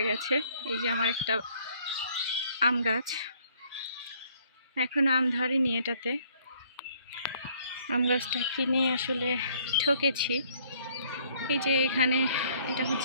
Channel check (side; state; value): both; inverted; correlation -0.62